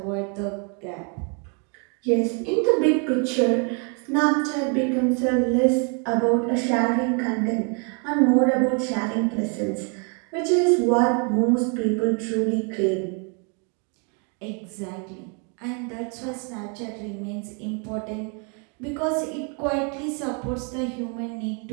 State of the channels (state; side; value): quieter; left; 37.1 dB